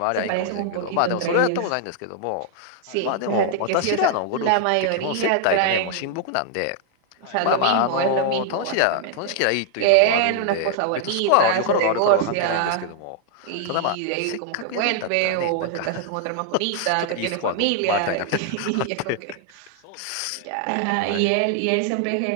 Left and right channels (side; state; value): both; different; correlation 0.00